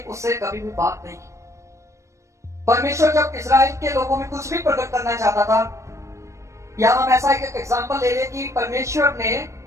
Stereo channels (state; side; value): late; left; 0.15 ms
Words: उससे कभी भी बात नहीं की। परमेश्वर जब इस्राएल के लोगों में कुछ भी प्रकट करना चाहता था, या हम ऐसा एक एग्जांपल ले ले कि परमेश्वर ने